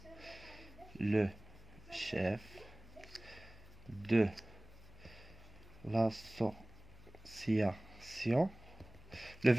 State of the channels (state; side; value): noise; left; hum, 20 dB below the sound